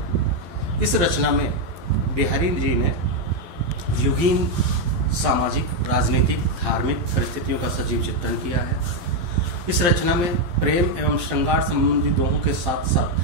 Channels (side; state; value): left; late; 11 ms